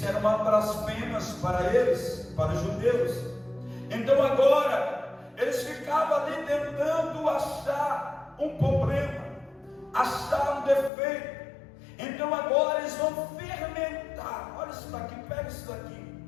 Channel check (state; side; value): drops out; right; at 10.9 s